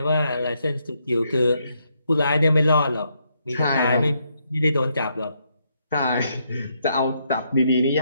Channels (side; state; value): both; inverted; correlation -0.77